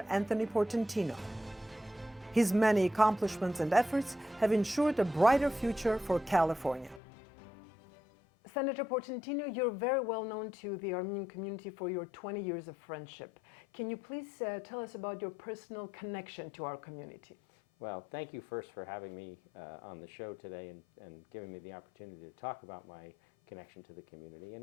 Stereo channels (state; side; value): drops out; right; at 7.0 s